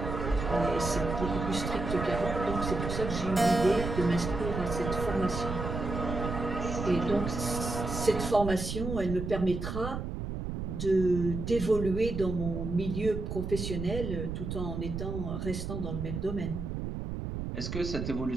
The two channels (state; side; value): noise; right; rumble, 4 dB below the sound